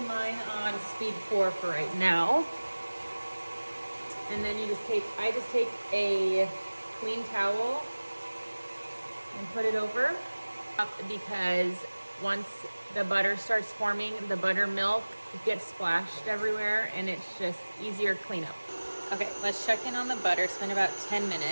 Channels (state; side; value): inverted; both; correlation -1.00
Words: mine on speed 4 for right now. And then I just take a clean towel and put it over, because once the butter starts forming, the buttermilk gets splashed everywhere and it's just easier cleanup. Okay, let's check in on the butter. It's been about 10